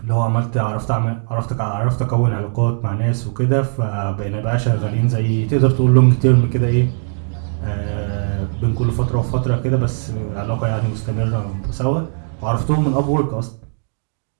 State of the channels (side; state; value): left; silent; 59 dB below the other